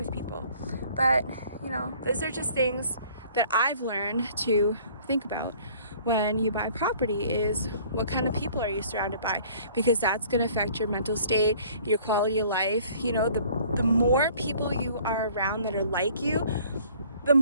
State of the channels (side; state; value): both; inverted; correlation -0.54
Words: people. But you know, those are just things that I've learned to think about when you buy property, is what kind of people are you surrounded by, because that's going to affect your mental state, your quality of life. You know, the more people you are around that are like you, the